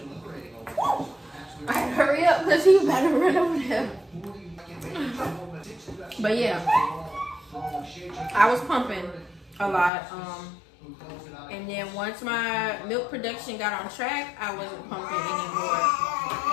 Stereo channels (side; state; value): right; drops out; at 9.9 s